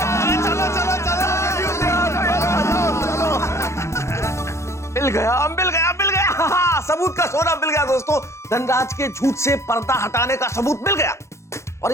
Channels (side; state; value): right; late; 0.14 ms